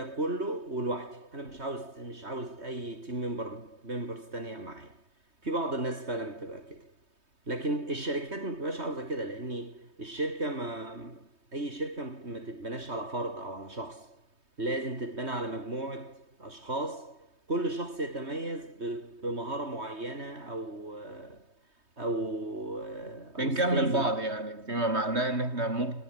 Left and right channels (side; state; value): left; late; 3.2 ms